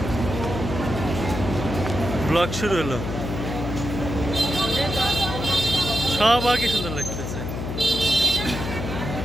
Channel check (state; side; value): noise; left; hum, 5 dB below the sound